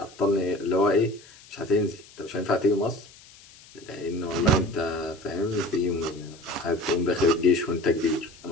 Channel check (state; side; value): noise; left; hiss, 23 dB below the sound